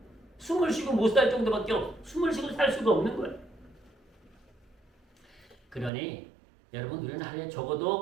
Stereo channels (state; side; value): drops out; left; at 5.9 s